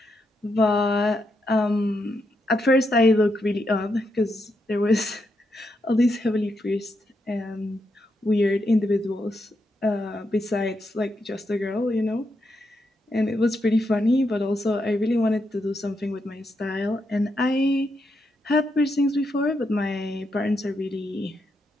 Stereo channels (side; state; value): both; normal; correlation 0.82